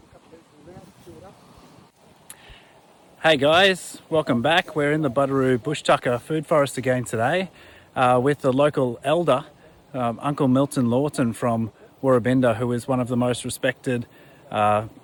Hey guys, welcome back. We're in the Buderoo Bush Tucka food forest again today with the local elder, Uncle Milton Lawton from Woorabinda, who is one of the most respected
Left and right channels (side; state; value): both; identical; correlation 1.00